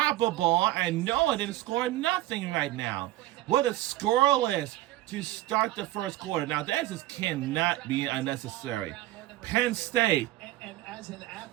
and Noah didn't score nothing right now. What a scoreless to start the first quarter. Now, that just cannot be unnecessary. Penn State. And as an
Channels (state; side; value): quieter; left; 16.2 dB